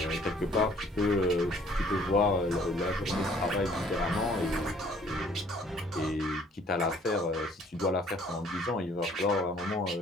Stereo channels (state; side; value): normal; both; correlation 0.58